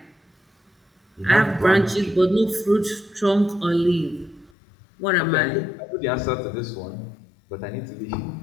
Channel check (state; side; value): drops out; right; at 4.5 s